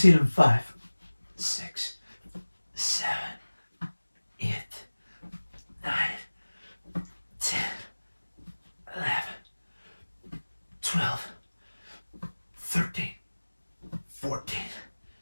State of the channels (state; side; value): inverted; both; correlation -1.00